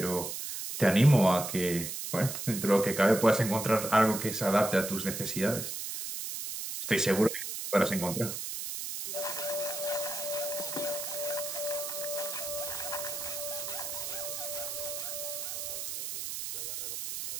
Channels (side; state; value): right; noise; hiss, 5 dB below the sound